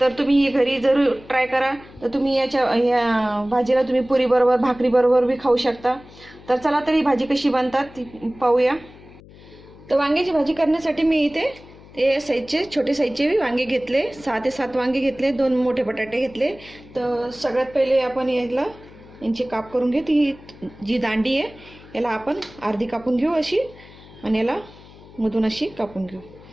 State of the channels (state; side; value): noise; left; hum, 21 dB below the sound